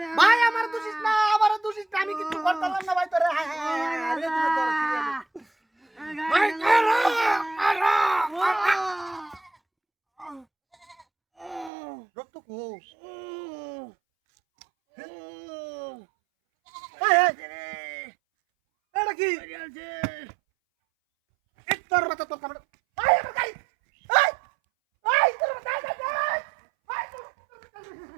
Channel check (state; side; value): drops out; left; at 11.7 s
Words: ভাই আমার দোষিস না আমার দোষিস না আমি কিছু করতাম না ভাই তোরে ভাই রক্ত কো এটা কি তোর মাথা তোর